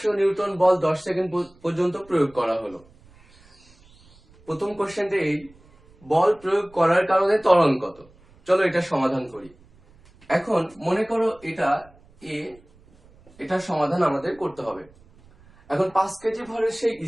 নিউটন বল 10 সেকেন্ড পর্যন্ত প্রয়োগ করা হলো। প্রথম কোশ্চেনটা এই, বল প্রয়োগ করার কারণে ত্বরণ কত? চলো এটা সমাধান করি। এখন মনে করো এটা এ, এটার সমাধান আমাদের করতে হবে। এখন 5 কেজি ভরের সেই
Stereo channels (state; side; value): noise; right; rumble, 28 dB below the sound